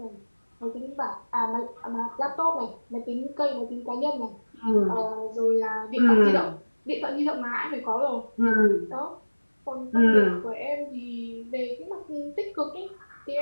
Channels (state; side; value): inverted; both; correlation -1.00